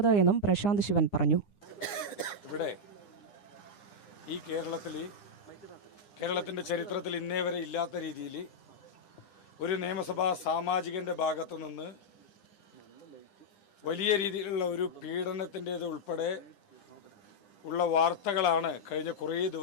എന്നും പ്രശാന്ത് ശിവൻ പറഞ്ഞു. ഇവിടെ ഈ കേരളത്തിന്റെ ചരിത്രത്തിൽ ഇന്നേ വരെ ഇല്ലാത്ത രീതിയിൽ ഒരു നിയമസഭാ സാമാജികന്റെ ഭാഗത്തു നിന്ന് വലിയ രീതിയിലുള്ള ഒരു പീഡനത്തിൻ്റേത് ഉൾപ്പെടെ ഉള്ള വാർത്തകളാണ് കഴിഞ്ഞ കുറേ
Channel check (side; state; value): right; late; 9.9 ms